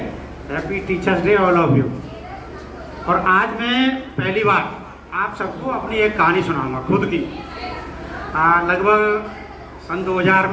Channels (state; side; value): identical; both; correlation 1.00